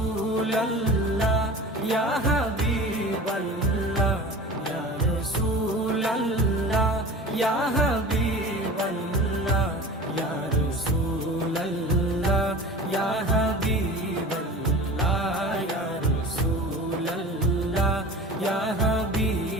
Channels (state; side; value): normal; both; correlation 0.37